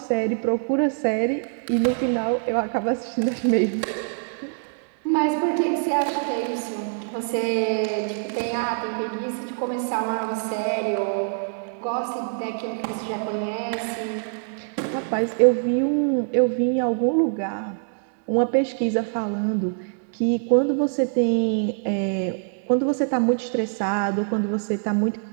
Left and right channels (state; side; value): silent; left; digital silence